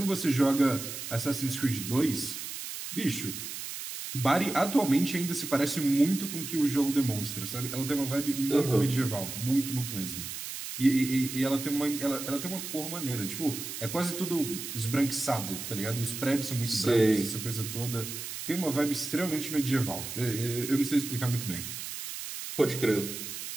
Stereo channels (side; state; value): right; noise; hiss, 7 dB below the sound